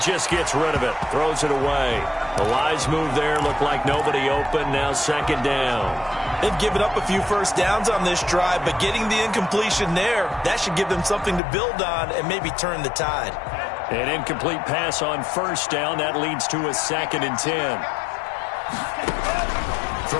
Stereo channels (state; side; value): drops out; right; at 11.4 s